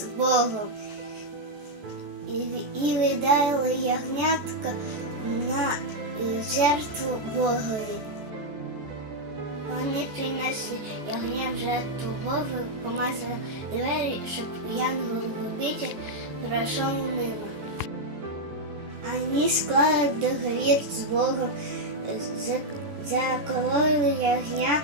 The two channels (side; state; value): left; late; 14 ms